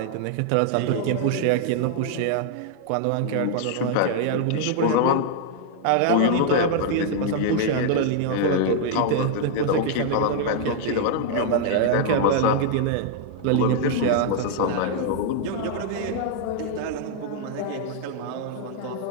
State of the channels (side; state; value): both; different; correlation 0.00